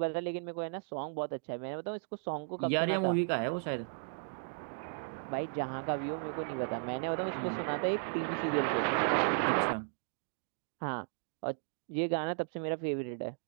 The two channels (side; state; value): left; silent; digital silence